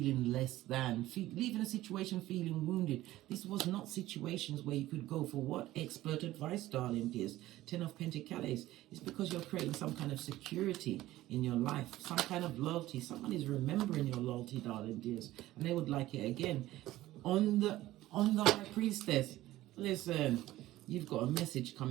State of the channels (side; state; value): left; quieter; 15.9 dB